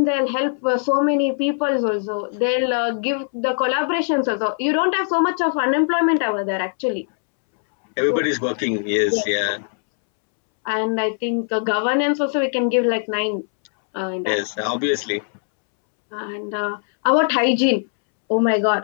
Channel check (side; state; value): right; silent; 65 dB below the other